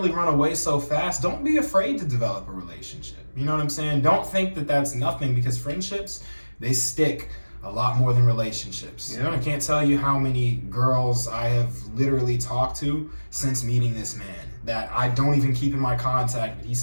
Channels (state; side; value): inverted; both; correlation -1.00